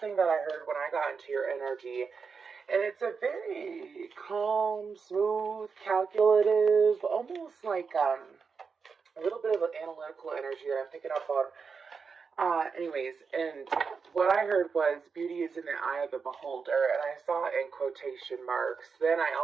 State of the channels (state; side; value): quieter; left; 5.4 dB